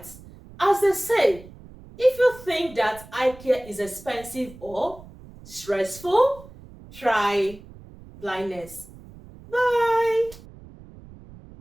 As they say, if you think that eye care is expensive or stressful, try blindness. Bye.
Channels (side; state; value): right; noise; rumble, 19 dB below the sound